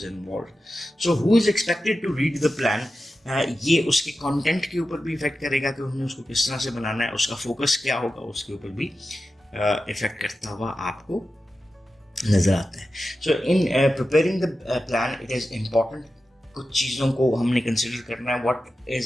involve. So who is expected to read the plan, ये उसके कंटेंट के ऊपर भी इफेक्ट करेगा कि उन्हें उसको किस तरह से बनाना है, उसका फोकस क्या होगा, उसके ऊपर भी इफेक्ट करता हुआ आपको नजर आता है। So in preparing the plan it is important, कुछ चीज़ों को हमने कंसिडर करना है। What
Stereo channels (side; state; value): both; normal; correlation 0.92